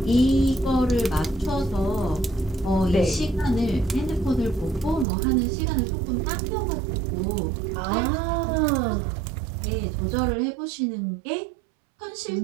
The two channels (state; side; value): drops out; left; at 5.1 s